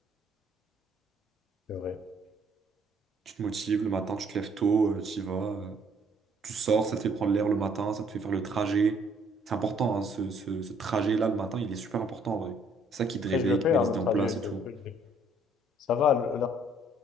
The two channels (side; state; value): both; normal; correlation 0.63